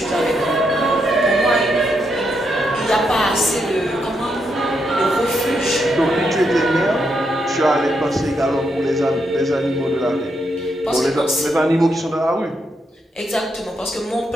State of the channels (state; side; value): normal; both; correlation 0.80